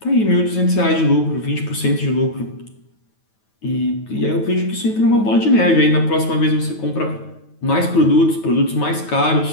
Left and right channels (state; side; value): late; right; 9.3 ms